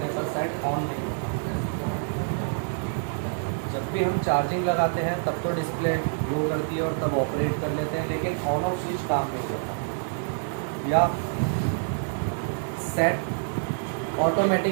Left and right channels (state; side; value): silent; left; 60 dB below the other